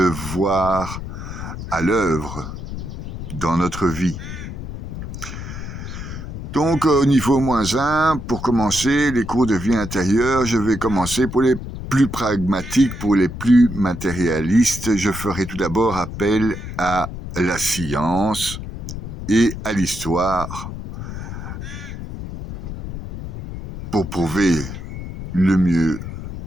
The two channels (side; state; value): left; noise; rumble, 8 dB below the sound